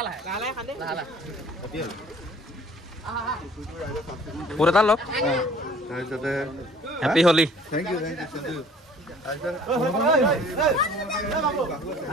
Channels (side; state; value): both; normal; correlation 0.52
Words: খান্দে হেপী হলি পুৰা এটা লওক তাৰপিছতে হেপী হলি থেংক ইউ